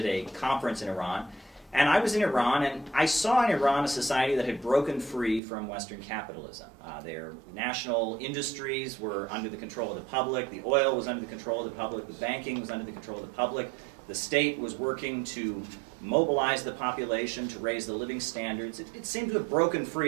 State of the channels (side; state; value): left; drops out; at 5.4 s